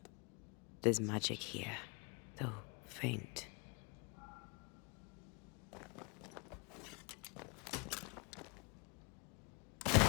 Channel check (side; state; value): right; quieter; 31.6 dB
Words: There's magic here, though faint.